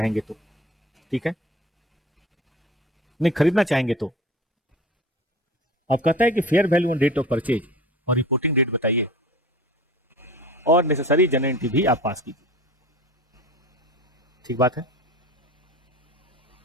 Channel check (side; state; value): both; normal; correlation 0.37